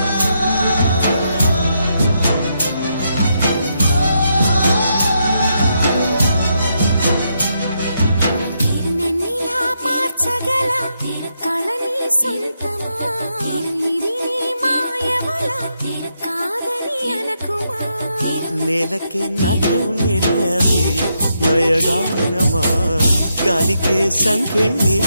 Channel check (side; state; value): both; inverted; correlation -0.80